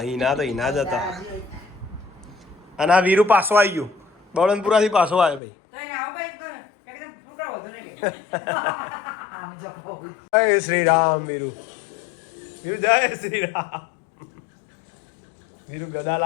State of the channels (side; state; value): right; drops out; at 5.4 s